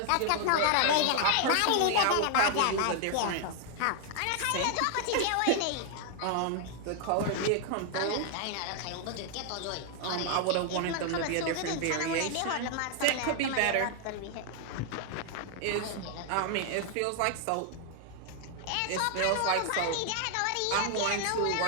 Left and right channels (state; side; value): different; both; correlation 0.00